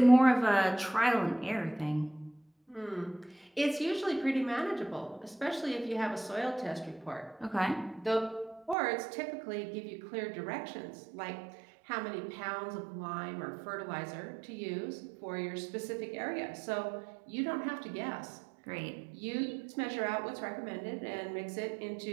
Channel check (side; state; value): left; drops out; at 8.8 s